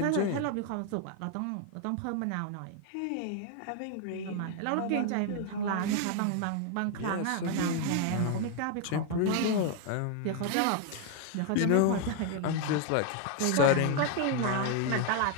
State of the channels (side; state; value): both; different; correlation 0.01